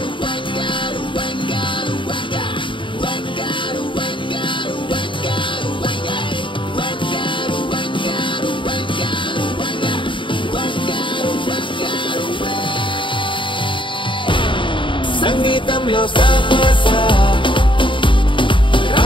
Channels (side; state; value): right; late; 0.24 ms